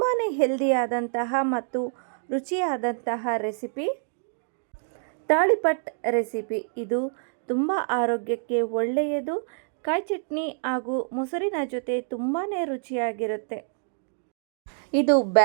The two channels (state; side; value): silent; left; digital silence